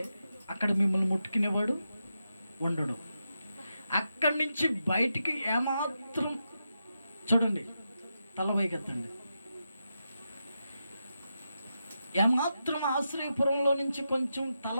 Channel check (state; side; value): inverted; both; correlation -0.87